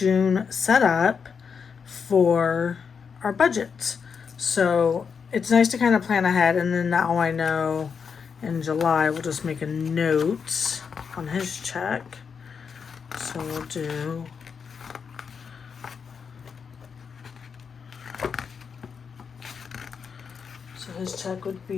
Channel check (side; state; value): right; quieter; 6.2 dB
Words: setup for our budget. So it's nice to kind of plan ahead, and then now I know in July we'll just make a note on his check. So we'll do his check would